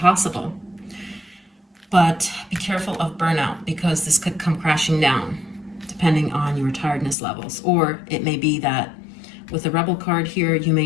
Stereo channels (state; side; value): drops out; right; at 7.2 s